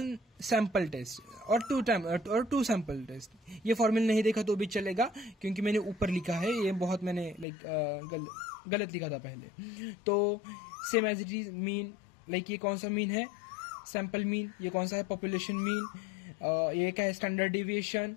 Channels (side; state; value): right; drops out; at 7.5 s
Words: sample test और 2 सैंपल टेस्ट। ये फॉर्मूला नहीं देखा तो भी चलेगा, क्योंकि मैंने ऊपर लिखा है, ये बहुत मैंने गलत लिखा था पहले। तो same as it is mean, ये कौन सा मीन है? Sample mean. ये कौन सा है? Population mean. ये क्या है? Standard deviation.